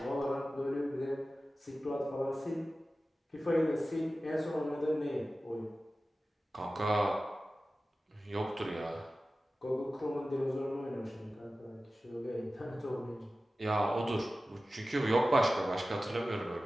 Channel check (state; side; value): normal; both; correlation 0.95